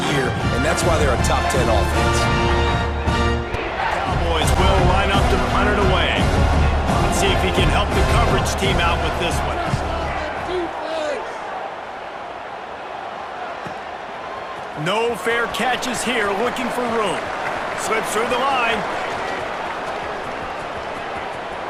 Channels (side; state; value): both; identical; correlation 1.00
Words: year, and that's why they're a top 10 offense. Cowboys will line up to punt it away. Let's see if he can help the coverage team out with this one. No fair catches here, looking for room. Slips through the line.